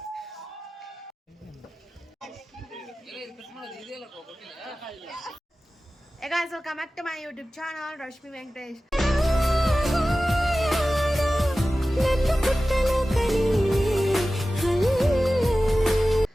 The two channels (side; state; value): both; normal; correlation 0.96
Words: Hey guys, welcome back to my YouTube channel, Rashmi Venkatesh.